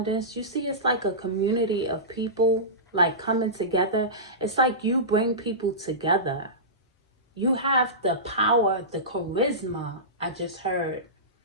You see it's like a community of people like coming together. It's like you bring people together. You have the power, the charisma, I just heard,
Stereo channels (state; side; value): normal; both; correlation -0.19